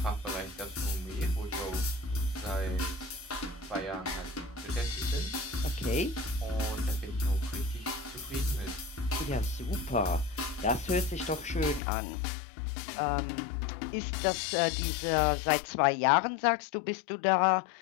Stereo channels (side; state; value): right; drops out; at 11.8 s